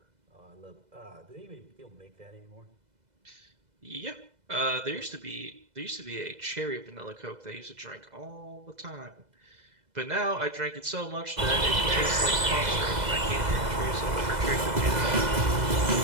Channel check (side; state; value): left; late; 2.0 ms